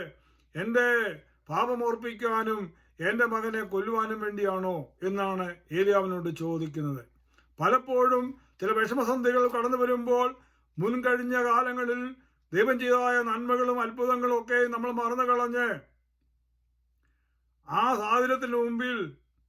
എൻ്റെ പാപമോർപ്പിക്കാനും എൻ്റെ മകനെ കൊല്ലുവാനും വേണ്ടിയാണോ എന്നാണ് ഏലിയാവിനോട് ചോദിക്കുന്നത്. പലപ്പോഴും ചില വിഷമസന്ധികൾ കടന്നു വരുമ്പോൾ മുൻകഴിഞ്ഞ കാലങ്ങളിൽ ദൈവം ചെയ്തതായ നന്മകളും അത്ഭുതങ്ങളും ഒക്കെ നമ്മൾ മറന്നു കളഞ്ഞ് ആ സാഹചര്യത്തിന് മുമ്പിൽ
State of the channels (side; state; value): both; identical; correlation 1.00